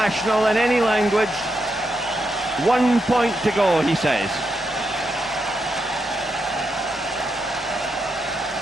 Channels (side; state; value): both; normal; correlation 0.84